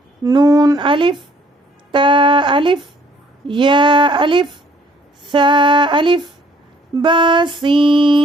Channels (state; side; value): normal; both; correlation 0.61